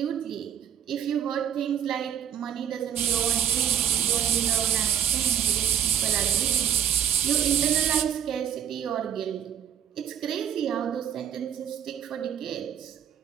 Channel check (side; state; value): left; quieter; 9.3 dB